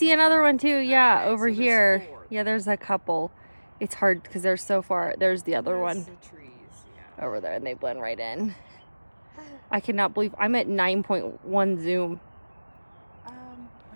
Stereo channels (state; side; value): inverted; both; correlation -1.00